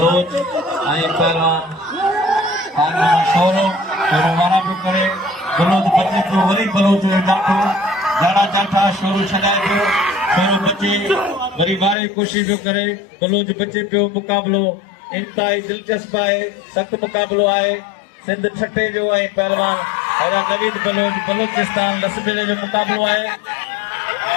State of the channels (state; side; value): drops out; right; at 12.0 s